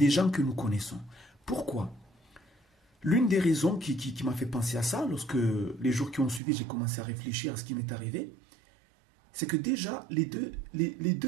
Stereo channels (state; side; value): drops out; left; at 6.4 s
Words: gens que nous connaissons. Pourquoi? L'une des raisons qui m'a fait penser à ça, lorsque les jours qui ont suivi, j'ai commencé à réfléchir à ce qui m'est arrivé, c'est que déjà, les